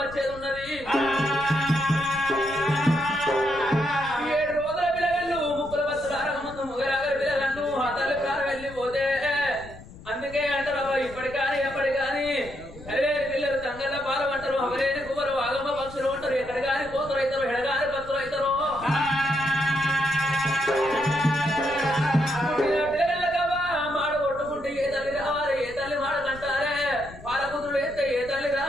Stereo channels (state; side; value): noise; left; rumble, 17 dB below the sound